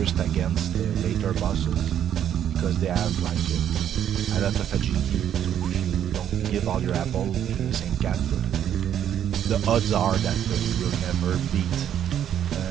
against later bosses because they have like a lot of agility. So if you don't give all your apple to the same cat, the odds are that you will never beat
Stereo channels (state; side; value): quieter; left; 9.9 dB